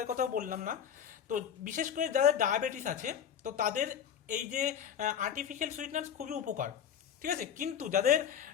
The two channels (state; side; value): quieter; right; 8.8 dB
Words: কথাও বললাম না, তো বিশেষ করে যাদের ডায়াবেটিস আছে তো তাদের এই যে আর্টিফিশিয়াল সুইটনার্স খুবই উপকার। ঠিক আছে, কিন্তু যাদের